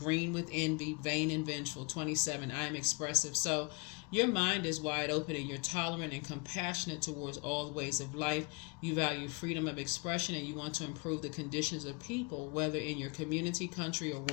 with envy, vain and vengeful. 27, I am expressive. So your mind is wide open and you're tolerant and compassionate towards all ways of life. You value freedom of expression and you want to improve the conditions of people, whether in your community, country, or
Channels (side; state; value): right; quieter; 30.7 dB